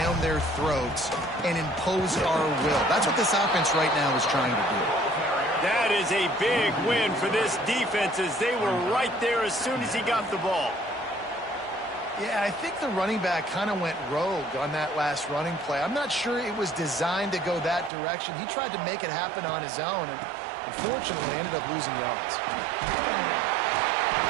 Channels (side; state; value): left; drops out; at 17.9 s